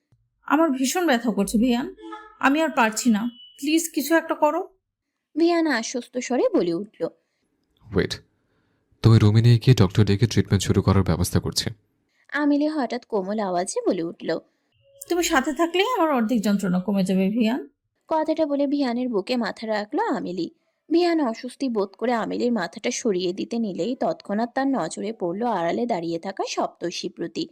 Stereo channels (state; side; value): identical; both; correlation 1.00